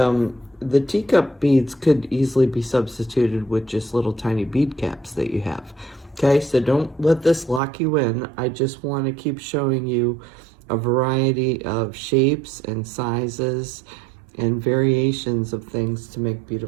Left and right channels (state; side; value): drops out; left; at 7.6 s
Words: the teacup beads could easily be substituted with just little tiny bead caps that you have. Okay, so don't let this lock you in. I just want to keep showing you a variety of shapes and sizes and variations of things to make